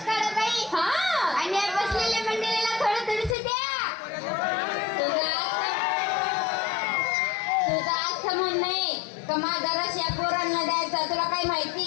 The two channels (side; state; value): right; drops out; at 3.4 s